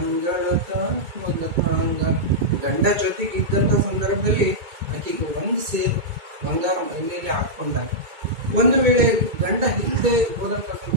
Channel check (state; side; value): late; left; 2.2 ms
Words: ಮೊದಲಾಂಗ. ಗಂಡ ಜೊತೆಗಿದ್ದಂತ ಸಂದರ್ಭದಲ್ಲಿ ಆಕೆಗೆ ಒಂದು ಸೇರು ಬಂಗಾರ ಮೈ ಮೇಲೆ ಹಾಕೊಂಡಾಗ, ಒಂದು ವೇಳೆ ಗಂಡ ಇಲ್ಲದೆ ಹೋದಂತ